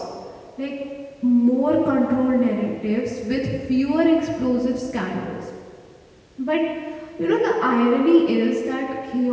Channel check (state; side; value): identical; both; correlation 1.00